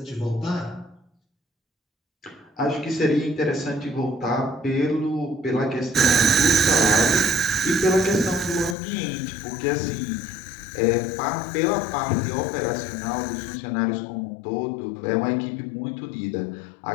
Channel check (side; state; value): right; drops out; at 8.8 s